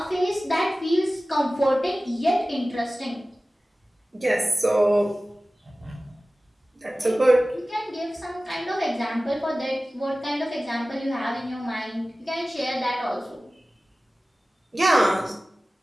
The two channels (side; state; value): both; normal; correlation 0.97